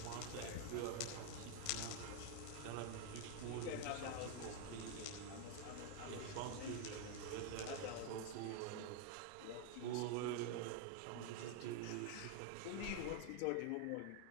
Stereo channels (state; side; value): different; both; correlation 0.00